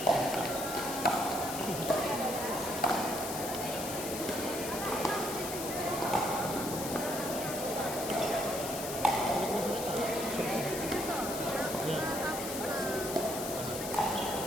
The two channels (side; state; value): left; noise; hiss, 7 dB below the sound